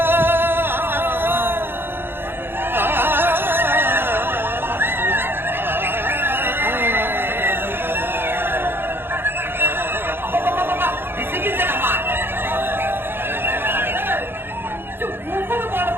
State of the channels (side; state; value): left; late; 0.10 ms